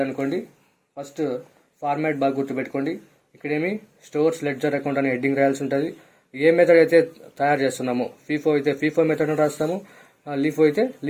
అనుకోండి, ఫస్ట్ ఫార్మాట్ బాగా గుర్తుపెట్టుకోండి. ఇక్కడేమి స్టోర్స్ లెడ్జర్ అకౌంట్ అనే హెడ్డింగ్ రాయాల్సి ఉంటుంది. ఏ మెథడ్ అయితే తయారు చేస్తున్నామో, ఫీఫో అయితే ఫీఫో మెథడ్ అని రాస్తాము, లీఫో అయితే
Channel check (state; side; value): identical; both; correlation 1.00